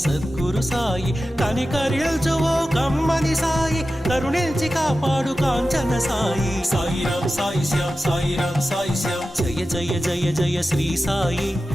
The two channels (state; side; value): normal; both; correlation 0.93